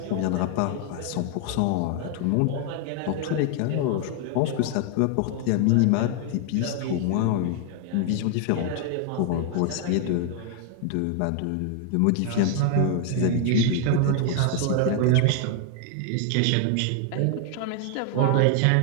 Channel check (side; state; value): both; different; correlation 0.00